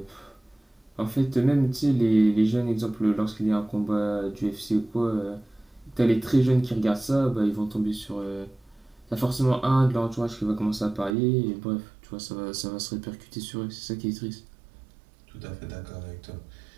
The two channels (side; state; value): left; drops out; at 11.2 s